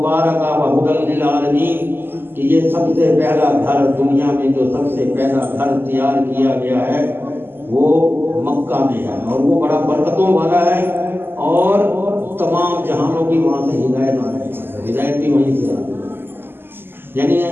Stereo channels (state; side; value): late; left; 0.10 ms